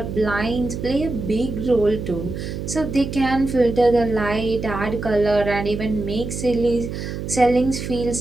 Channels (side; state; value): right; noise; hum, 6 dB below the sound